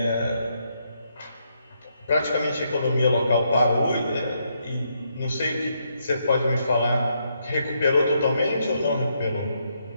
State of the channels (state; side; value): inverted; both; correlation -0.77